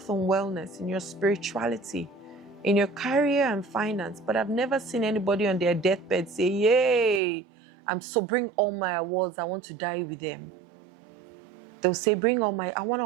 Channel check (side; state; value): left; drops out; at 7.2 s